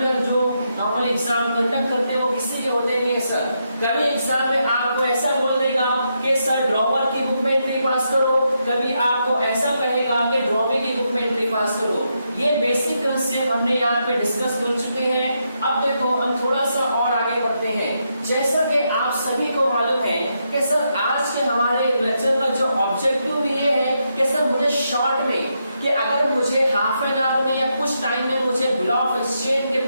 जो नॉर्मल एग्जाम कंडक्ट करते हैं वो किसी के होते नहीं है सर। कभी एग्जाम में आपको ऐसा बोल देगा कि सर ड्रॉवर की बुक में एंट्री पास करो, कभी आपको ऐसा कहेगा कि ड्रॉवी की बुक में एंट्री पास करो। ये बेसिक कंसेप्ट हमने यहाँ पे डिस्कस कर चुके हैं। अब देखो हम थोड़ा सा और आगे बढ़ते हैं। जैसा कि आप सभी को मालूम है कि सर आज के हमारे लेक्चर का जो ऑब्जेक्टिव भी ये है कि सर मुझे शॉर्ट में, कि अगर मुझे हाफ एन आवर में या कुछ टाइम में मुझे बिल ऑफ एक्सचेंज के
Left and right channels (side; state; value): both; inverted; correlation -0.81